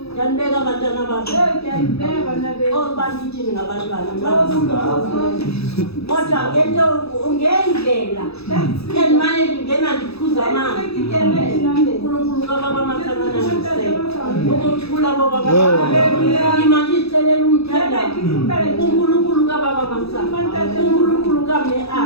Yanibeka abantwana bakho. Oh bandithini ngabantwana. Kodwa ngento ngendlela endimane ngena ndiphuza amanzi. uNkulunkulu kababa masanana ukuthula bobaba. Imali isicelela umthandazo. uNkulunkulu kababa masana. uNkulunkulu kame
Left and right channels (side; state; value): right; late; 0.78 ms